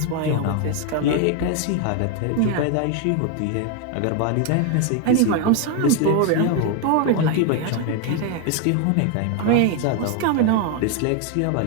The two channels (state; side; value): different; both; correlation 0.01